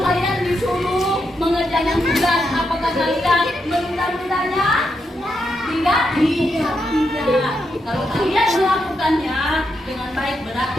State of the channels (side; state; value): both; normal; correlation 0.83